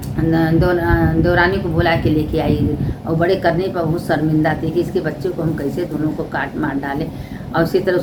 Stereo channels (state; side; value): identical; both; correlation 1.00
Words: दौरानी को बुला के लेके आई और बड़े करने पर बहुत शर्मिंदा थी कि इसके बच्चे को हम कैसे दोनों को काट मार डालें। और उसी तरह